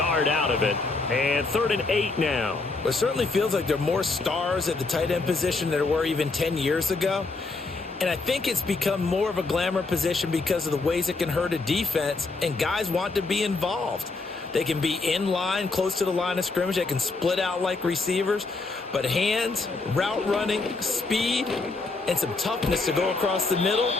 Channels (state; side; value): quieter; right; 3.7 dB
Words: out of it. And 3rd and 8 now. Well, it certainly feels like there are more stars at the tight end position than there were even 10 years ago. And I think it's become more of a glamour position because of the ways it can hurt a defense, and guys want to be involved. They can be in line, close to the line of scrimmage. They can split out like receivers. But hands, route running, speed, and some toughness to go across the middle,